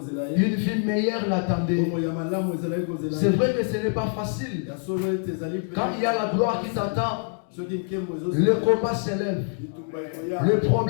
Une vie meilleure l'attendait. C'est vrai que ce n'est pas facile. Quand il y a la gloire qui t'attend, le combat s'élève. Le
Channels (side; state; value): right; silent; 56 dB below the other